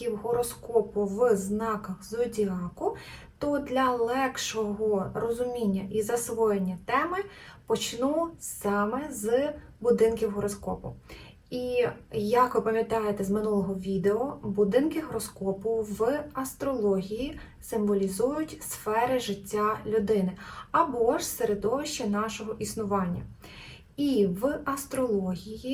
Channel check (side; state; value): both; identical; correlation 1.00